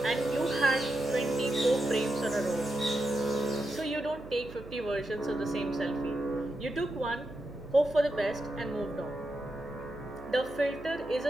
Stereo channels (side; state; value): right; noise; hum, 17 dB below the sound